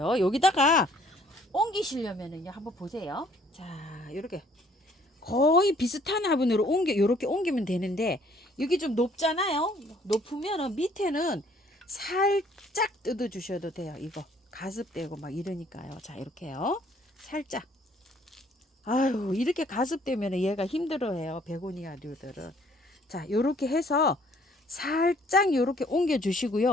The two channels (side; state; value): both; normal; correlation 0.61